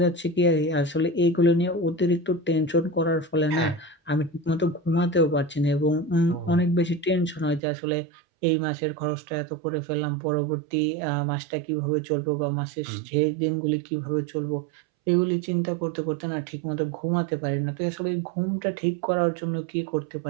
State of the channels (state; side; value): drops out; left; at 7.6 s